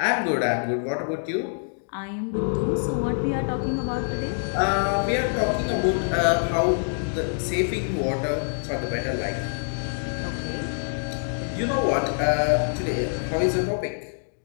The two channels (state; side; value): silent; right; digital silence